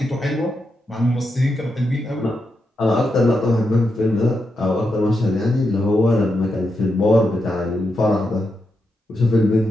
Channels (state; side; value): normal; both; correlation 0.85